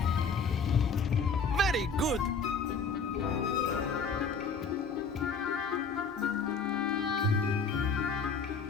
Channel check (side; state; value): right; quieter; 4.8 dB